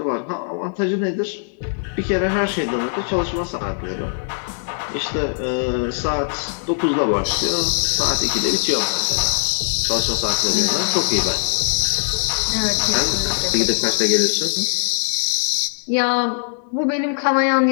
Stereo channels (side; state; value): right; silent; digital silence